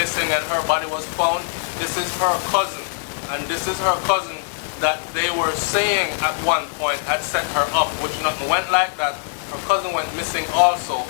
and her body was found. This is her cousin, and this is her cousin that they were saying at one point had set her up, which nothing went like that. Her cousin went missing also,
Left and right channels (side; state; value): right; silent; 62 dB below the other